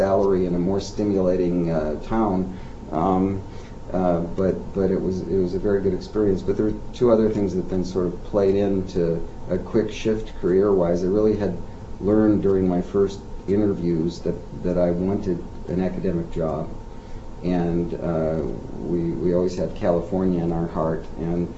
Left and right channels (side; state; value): both; identical; correlation 1.00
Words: in a more stimulating town. But it was a very good experience. But there were two other things that then sort of played into a quick shift career-wise. I really had learned during my first interviews that I wanted an academic job. And we always had California in our heart. And